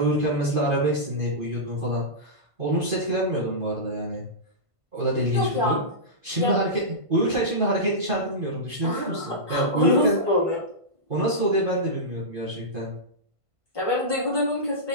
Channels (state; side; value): late; left; 1.5 ms